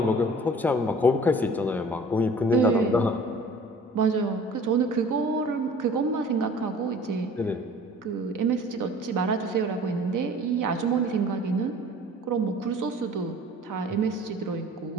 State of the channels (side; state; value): both; normal; correlation 0.48